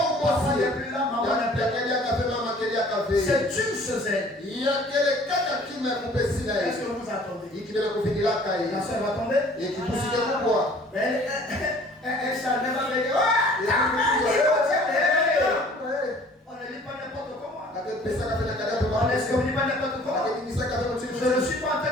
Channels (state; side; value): normal; both; correlation 0.52